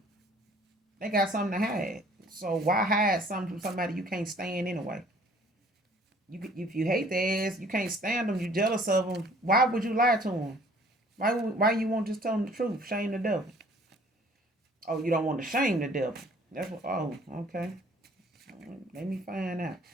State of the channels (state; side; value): normal; both; correlation 0.55